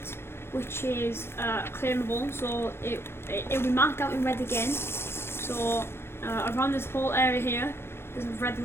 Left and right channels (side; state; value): right; late; 0.12 ms